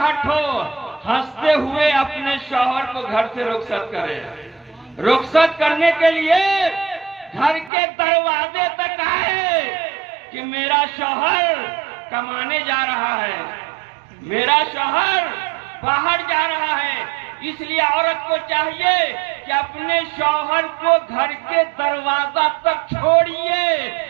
हो, हंसते हुए अपने शौहर को घर से रुखसत करे। रुखसत करने के लिए घर के दरवाजे तक आए कि मेरा शौहर कमाने जा रहा है, मेरा शौहर बाहर जा रहा है। इसलिए औरत को चाहिए कि अपने शौहर को घर के दरवाजा तक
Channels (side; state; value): left; drops out; at 7.7 s